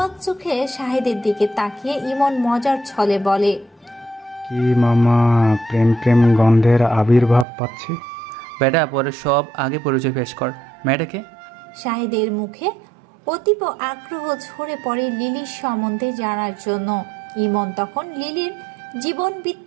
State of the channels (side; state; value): left; drops out; at 7.5 s